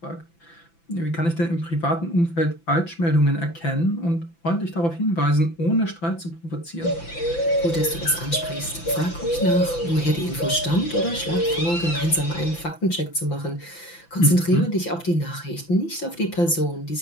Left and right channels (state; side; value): late; right; 5.9 ms